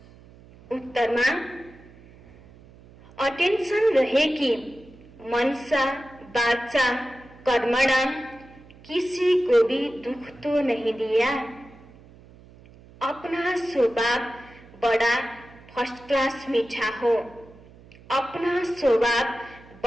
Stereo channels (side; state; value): right; noise; hum, 23 dB below the sound